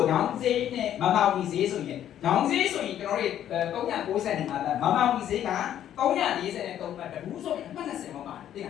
ညောင်စေးနဲ့မမောင်ကြီးစေးဆိုရင်ညောင်စေးဆိုရင်ကျွန်တော်တို့390မှာမမောင်ကြီးစေးက343ပတ်တကူဆိုရင်အမှတ်20မှာပါတယ်သိလ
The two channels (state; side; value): quieter; right; 10.9 dB